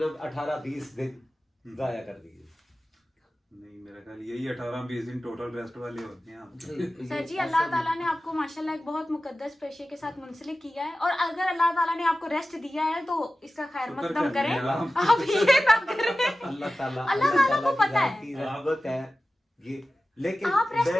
18-20 दिन जाया कर दिए। नहीं मेरा ख्याल यही 18-20 दिन टोटल रेस्ट वाले होते हैं आपके। सर जी अल्लाह ताला ने आपको माशाल्लाह एक बहुत मुकद्दस पेशे के साथ मुंसलिक किया है, और अगर अल्लाह ताला ने आपको रेस्ट दिया है तो इसका खैर मकदम करें, आप ये ना करें। अल्लाह ताला को पता है, रहमत है ये, लेकिन आप रेस्ट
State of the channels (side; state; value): both; normal; correlation 0.96